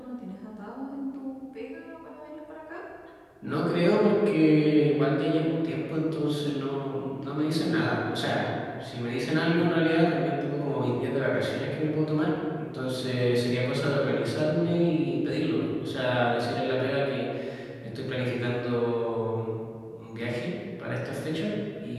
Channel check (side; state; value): both; identical; correlation 1.00